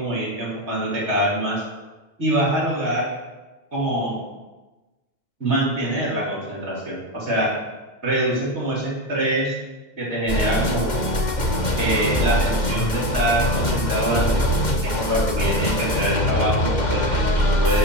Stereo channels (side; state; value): right; late; 2.1 ms